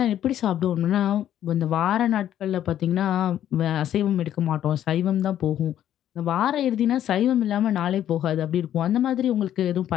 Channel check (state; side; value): quieter; right; 11.1 dB